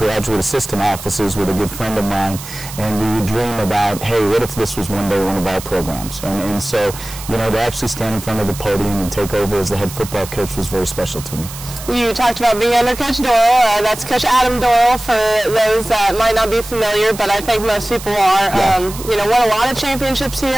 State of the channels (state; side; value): noise; right; hiss, 13 dB below the sound